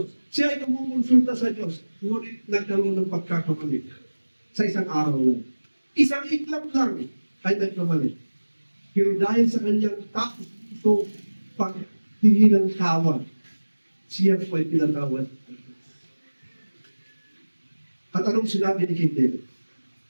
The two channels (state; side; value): inverted; both; correlation -1.00